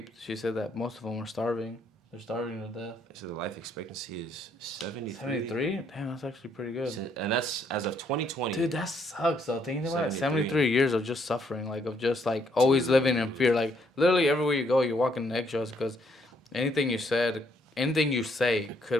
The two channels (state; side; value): normal; both; correlation 0.70